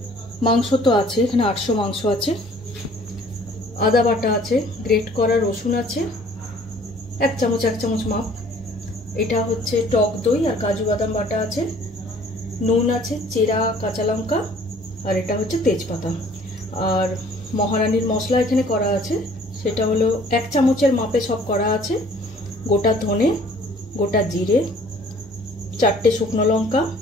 मांस तो आछे, एखाने 800 मांस आछे। आदा बाटा आछे, ग्रेट करा रसुन आछे, एक चामच माप। एटा होच्छे टक दई और काजू बादाम बाटा आछे, नुन आछे, चेरा काँचा लंका और एटा होच्छे तेजपाता। और महारानीर मशला एखाने करा आछे, सेटा हलो एक चामचेर मापे सब करा आछे। गोटा धने, गोटा जिरे, 4टे शुकनो लंका,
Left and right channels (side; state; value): both; normal; correlation 0.55